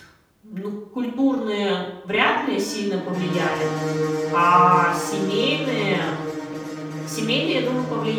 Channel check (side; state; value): both; identical; correlation 1.00